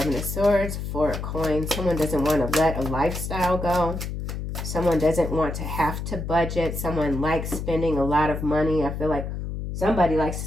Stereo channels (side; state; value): left; noise; hum, 5 dB below the sound